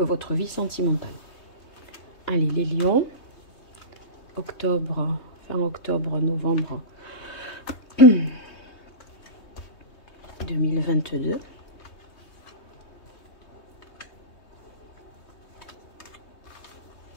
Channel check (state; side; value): late; right; 3.2 ms